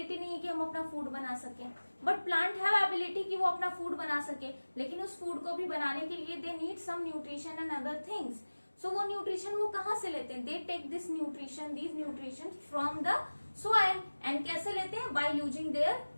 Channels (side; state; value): both; inverted; correlation -1.00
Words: नहीं है कि हम अपना फूड बना सके, बट प्लांट हैव एबिलिटी कि वो अपना फूड बना सके, लेकिन उस फूड को भी बनाने के लिए they need some nutrition and other things. वो न्यूट्रिशन वो कहाँ से लेते हैं? They take these nutrition from the soil. And कैसे लेते हैं? By using their